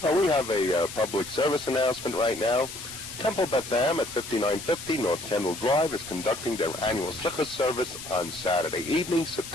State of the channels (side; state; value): left; noise; hiss, 11 dB below the sound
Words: Well, we have a public service announcement right now. Temple Beth Am at 5950 North Kendall Drive is conducting their annual Slichus service on Saturday evening,